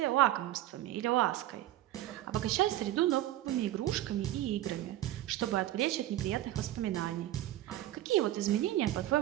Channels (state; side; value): quieter; left; 14.3 dB